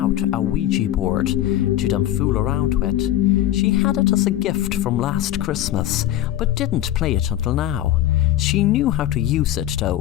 a Ouija board to them fool around with. She had it as a gift from last Christmas, but didn't play it until now. She knew how to use it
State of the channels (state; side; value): quieter; right; 13.0 dB